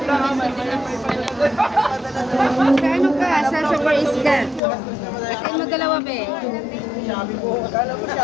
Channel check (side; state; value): right; drops out; at 4.6 s